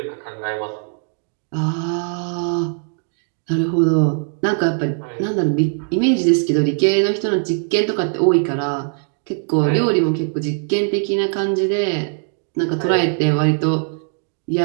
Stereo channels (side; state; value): left; silent; 56 dB below the other